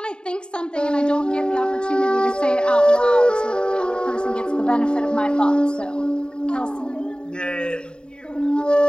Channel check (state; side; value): late; right; 0.050 ms